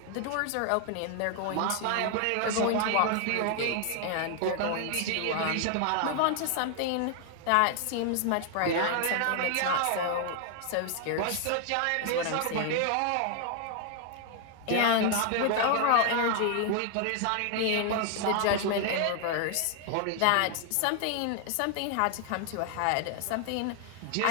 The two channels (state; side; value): different; both; correlation 0.00